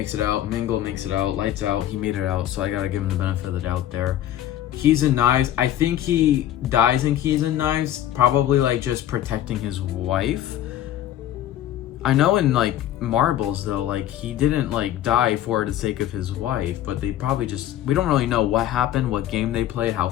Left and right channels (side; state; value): right; quieter; 12.2 dB